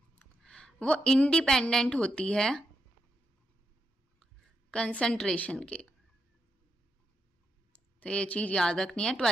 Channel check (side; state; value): both; normal; correlation 0.83